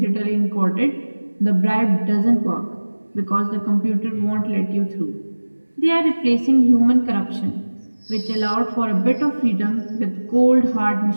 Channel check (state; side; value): inverted; both; correlation -1.00